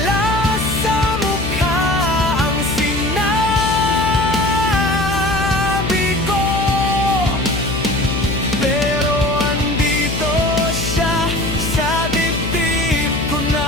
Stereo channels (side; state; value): left; noise; hum, 5 dB below the sound